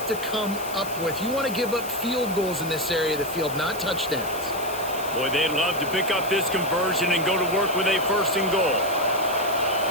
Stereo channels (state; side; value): noise; left; hiss, 13 dB below the sound